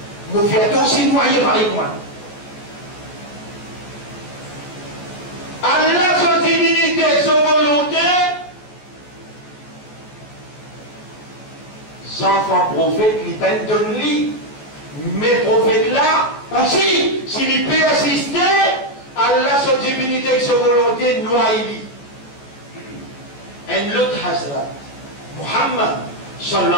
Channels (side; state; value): right; late; 14 ms